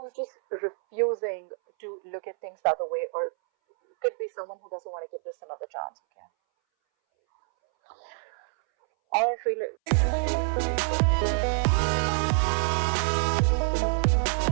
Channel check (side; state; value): left; silent; 60 dB below the other